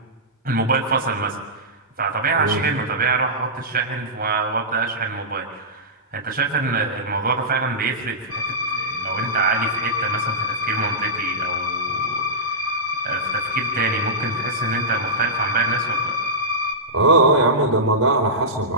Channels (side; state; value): both; normal; correlation -0.15